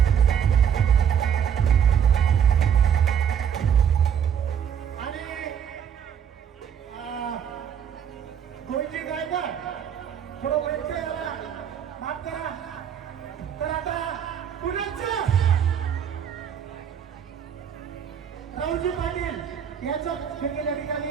गोविंदजी गायकवाड थोडं व्यत्यय आला, माफ करा. तर आता पुण्याचं राहुलजी पाटील याचं या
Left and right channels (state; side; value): quieter; left; 8.2 dB